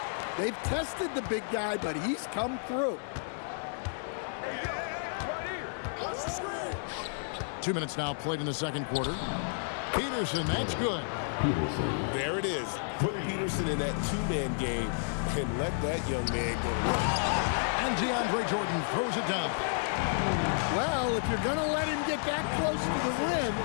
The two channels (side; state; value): right; silent; digital silence